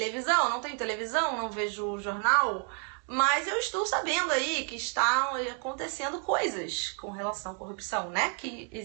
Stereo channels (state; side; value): quieter; left; 38.3 dB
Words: não tenho televisão, não vejo jornal, mas eu estou sabendo aí que está acontecendo coisas com relação à corrupção, né? Que